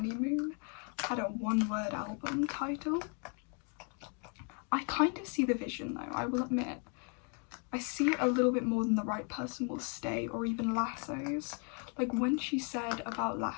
had a one-word album title. I kind of see the vision though, I will admit. I see it a little bit more than The Right Person Will Stay or even Lassos. Like when she said about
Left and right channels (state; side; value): quieter; right; 38.9 dB